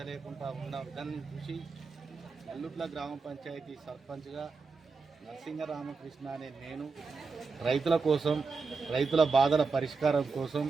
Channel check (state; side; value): quieter; left; 4.6 dB